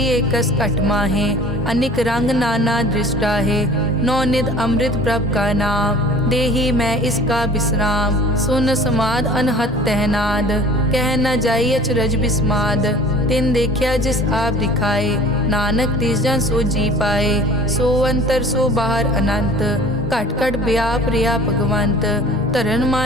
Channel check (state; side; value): normal; both; correlation 0.46